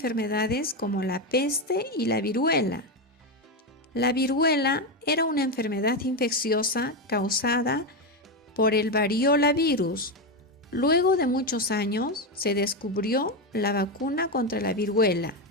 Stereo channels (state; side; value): normal; both; correlation 0.11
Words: como la peste y la viruela. La viruela era una enfermedad infecciosa causada por el variola virus. Luego de muchos años, se descubrió la vacuna contra la viruela.